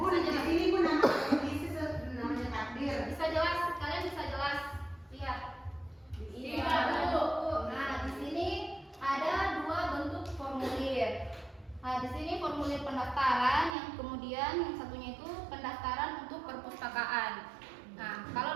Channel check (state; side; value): drops out; left; at 13.8 s